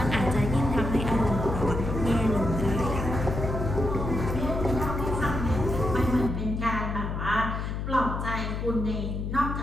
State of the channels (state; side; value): noise; left; hum, 3 dB below the sound